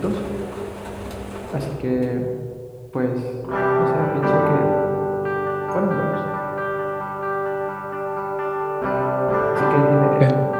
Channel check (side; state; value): both; identical; correlation 1.00